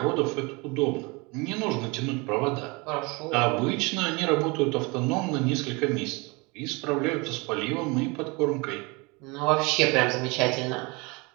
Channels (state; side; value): quieter; left; 27.0 dB